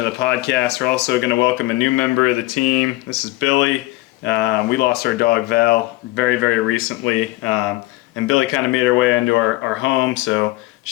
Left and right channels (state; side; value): quieter; right; 19.6 dB